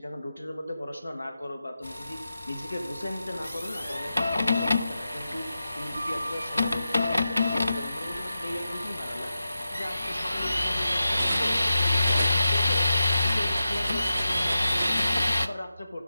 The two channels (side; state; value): both; inverted; correlation -0.92